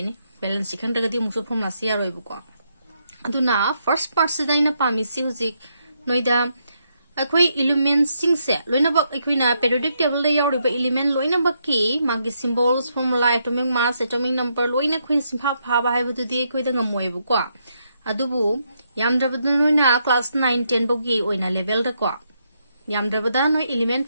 balance si khangdagadi muso formula si yaroi bu ko aduna first part si daina pami si hujik noida akoi elements sing se loina bak akoina periodic table da yauri ba element loina bak ki magi symbols formula atomic mass atomic number loina khoin simpha pha ba haibu tu di koi da ngamoi bu ko adubu yamdrabadu noina class 9 10 bogi oina level da ko yamdrabada no element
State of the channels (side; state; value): both; inverted; correlation -0.78